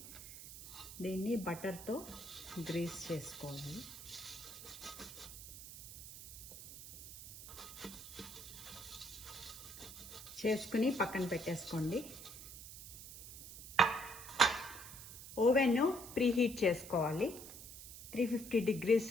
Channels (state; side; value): noise; right; hiss, 13 dB below the sound